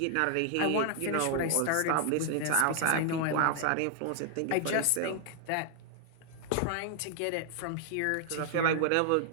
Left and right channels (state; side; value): different; both; correlation 0.00